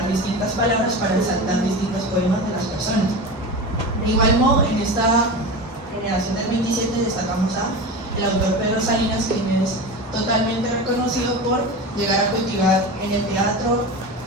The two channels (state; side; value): normal; both; correlation 0.27